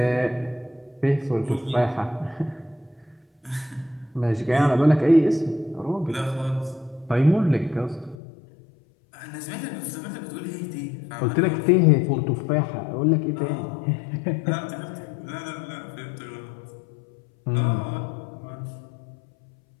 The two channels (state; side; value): drops out; right; at 8.2 s